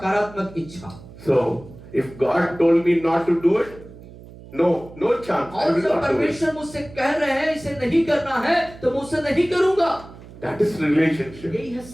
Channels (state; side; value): noise; right; hum, 18 dB below the sound